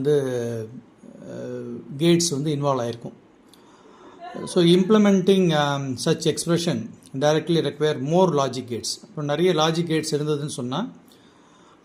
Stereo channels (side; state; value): both; identical; correlation 1.00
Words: கேட்ஸ் இன்வால்வ் ஆகிருக்கும். So implementing such expression directly require more logic gates. இப்போ நிறைய லாஜிக் கேட்ஸ் இருந்ததுன்னு சொன்னால்